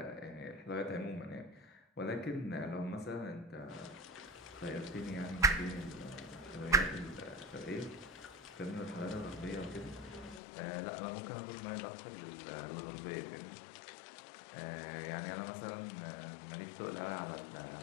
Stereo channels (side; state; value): right; drops out; at 10.4 s